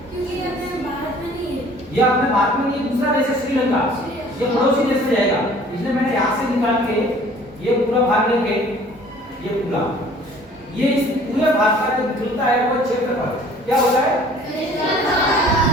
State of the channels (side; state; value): both; normal; correlation 0.52